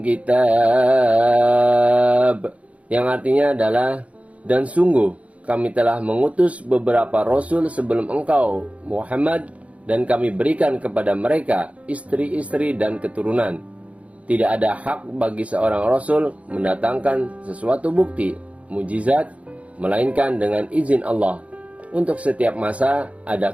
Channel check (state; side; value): late; left; 0.065 ms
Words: kitab, yang artinya adalah dan sungguh kami telah mengutus beberapa rasul sebelum engkau Muhammad, dan kami berikan kepada mereka istri-istri dan keturunan. Tidak ada hak bagi seorang rasul mendatangkan sesuatu bukti, mujizat, melainkan dengan izin Allah. Untuk setiap masa ada